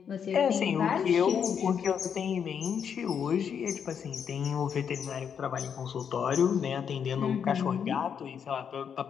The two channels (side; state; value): right; quieter; 7.5 dB